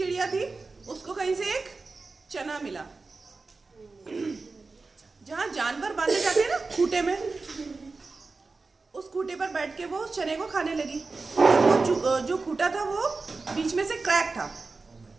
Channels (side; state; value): left; quieter; 3.9 dB